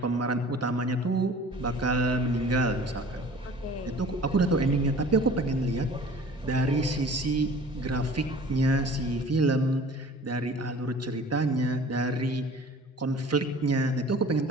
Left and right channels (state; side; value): normal; both; correlation 0.45